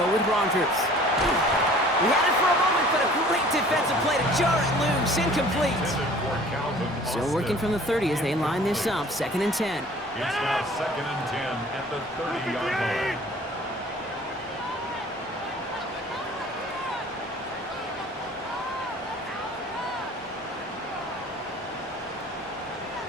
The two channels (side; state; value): both; normal; correlation 0.49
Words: with Rodgers. He had it for a moment, but a great defensive play to jar it loose, incomplete. Still working from the 30 as they line this up, second and 10. It's now second and 10 at the 30-yard line.